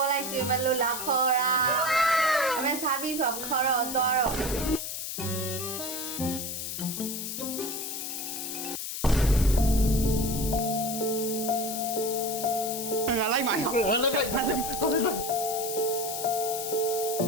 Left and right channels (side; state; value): left; noise; hiss, 5 dB below the sound